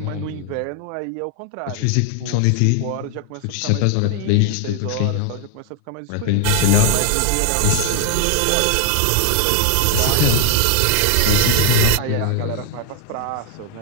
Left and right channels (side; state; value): both; different; correlation 0.00